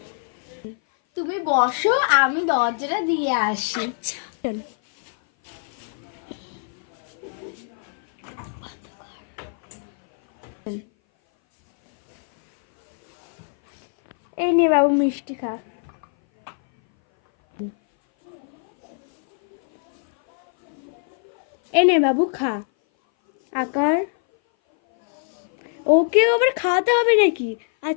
তুমি বসো, আমি দরজাটা দিয়ে আসি। আচ্ছা চলো। এই নে বাবু মিষ্টি খা। এই নে বাবু খা। আকার ওকেও আবার খাওয়াতে হবে নাকি?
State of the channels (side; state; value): right; silent; 58 dB below the other